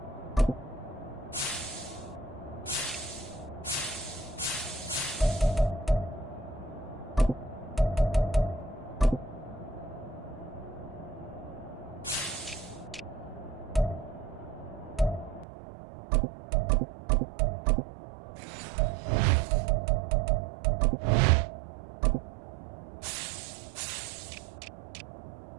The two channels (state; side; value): drops out; left; at 15.5 s